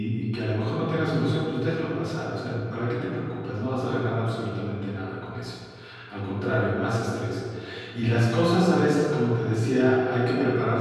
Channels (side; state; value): both; identical; correlation 1.00